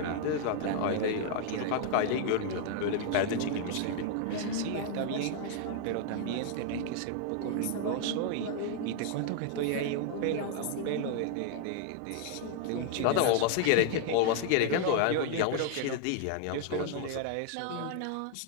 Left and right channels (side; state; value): both; different; correlation 0.00